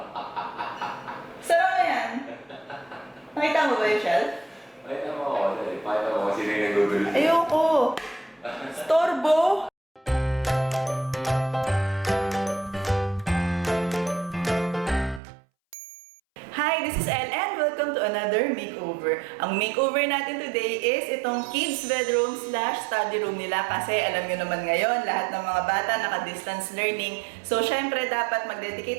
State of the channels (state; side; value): drops out; left; at 15.2 s